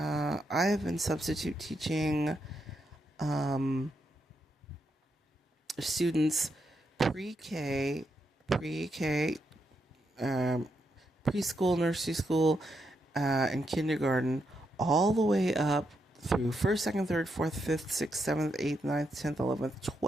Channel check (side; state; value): both; normal; correlation 0.81